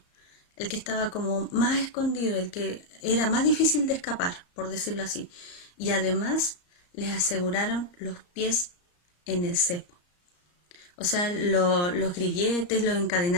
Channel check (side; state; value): right; late; 34 ms